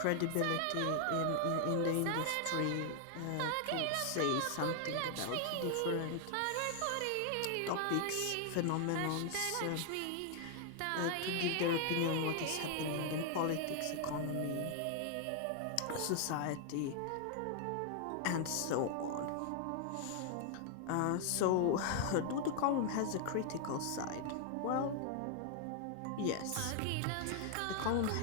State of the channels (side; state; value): both; different; correlation 0.00